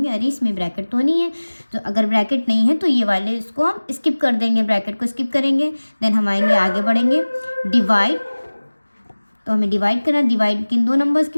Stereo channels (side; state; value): both; inverted; correlation -1.00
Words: अरे इसमें ब्रैकेट तो नहीं है। तो अगर ब्रैकेट नहीं है तो ये वाले इसको हम स्किप कर देंगे, ब्रैकेट को स्किप करेंगे। देन हम आएंगे, आगे बढ़ेंगे, डिवाइड। तो हमें डिवाइड करना, डिवाइड किन दो नंबर्स के